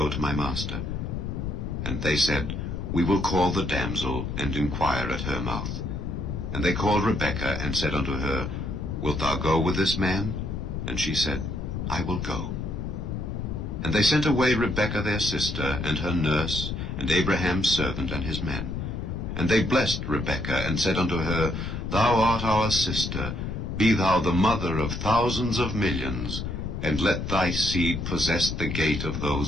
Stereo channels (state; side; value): noise; left; rumble, 4 dB below the sound